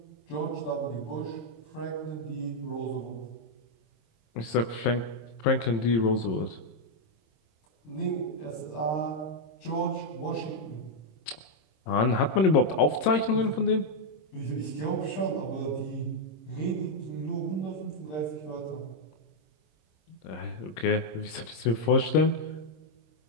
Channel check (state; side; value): late; right; 26 ms